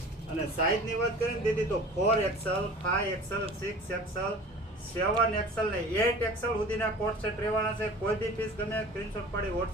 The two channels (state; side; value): normal; both; correlation 0.41